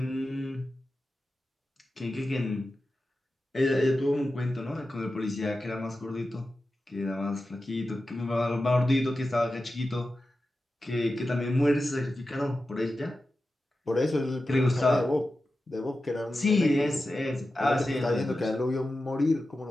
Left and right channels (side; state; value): both; normal; correlation 0.93